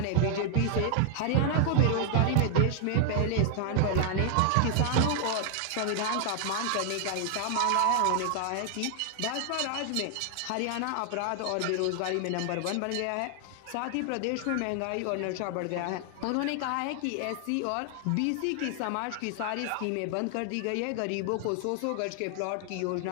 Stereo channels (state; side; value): different; both; correlation 0.00